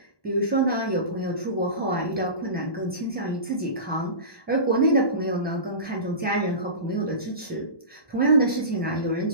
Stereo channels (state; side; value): late; right; 1.2 ms